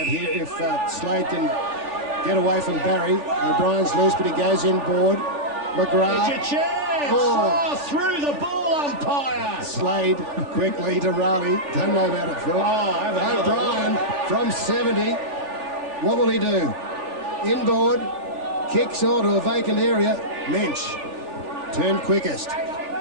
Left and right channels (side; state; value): left; late; 3.4 ms